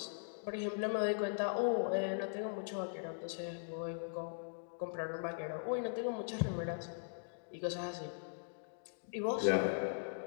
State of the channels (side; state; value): right; silent; digital silence